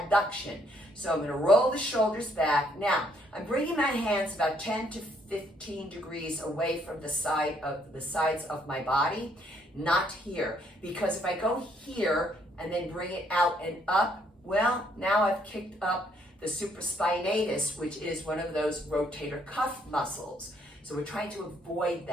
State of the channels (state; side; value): normal; both; correlation 0.69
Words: So I'm going to roll the shoulders back. Now, I'm bringing my hands about 10 to 15 degrees away from the sides of my body, not here. Because if I go here and then bring it out and up, well, now I've kicked up the supraspinatus, which is one of those rotator cuff muscles. So we're trying to avoid